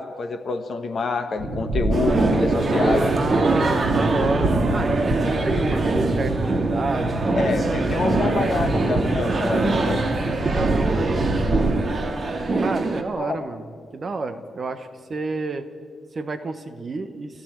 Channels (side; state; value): both; normal; correlation 0.83